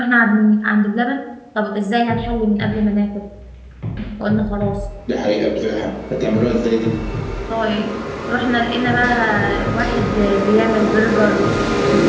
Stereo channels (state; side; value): identical; both; correlation 1.00